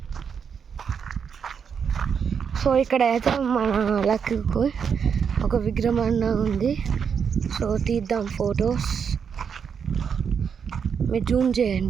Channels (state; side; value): quieter; left; 6.8 dB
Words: సో ఇక్కడ అయితే మన లక్కు ఒక విగ్రహం అన్న ఉంది. సో తీద్దాం ఫొటోస్. మీరు జూమ్